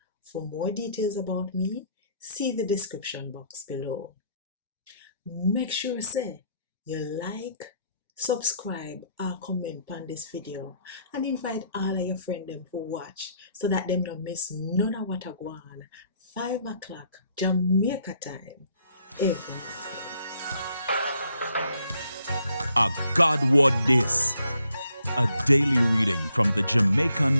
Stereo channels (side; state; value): both; inverted; correlation -0.70